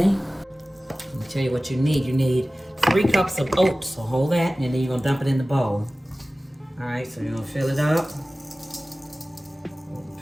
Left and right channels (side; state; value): both; normal; correlation 0.97